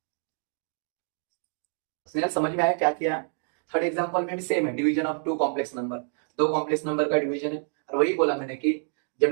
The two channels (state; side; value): silent; left; 60 dB below the other